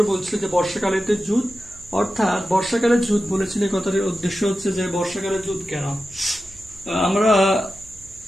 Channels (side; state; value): right; noise; hum, 25 dB below the sound